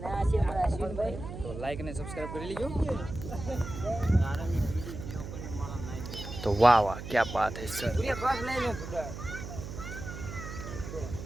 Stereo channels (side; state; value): right; noise; hum, 9 dB below the sound